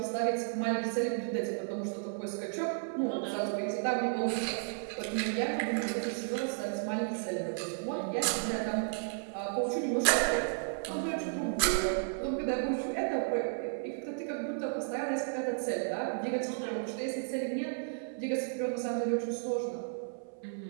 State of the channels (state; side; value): silent; left; 55 dB below the other